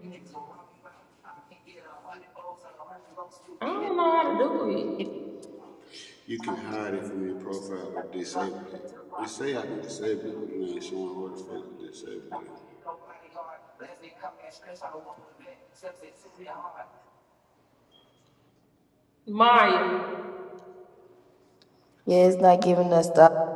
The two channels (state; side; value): identical; both; correlation 1.00